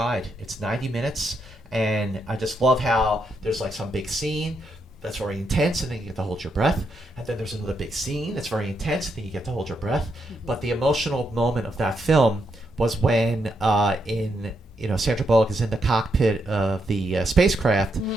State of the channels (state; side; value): normal; both; correlation 0.80